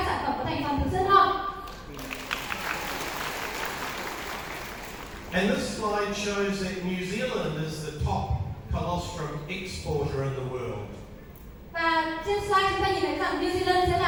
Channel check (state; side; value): identical; both; correlation 1.00